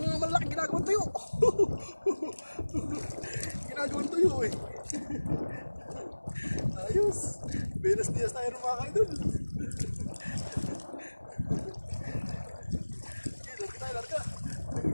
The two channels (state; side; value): inverted; both; correlation -1.00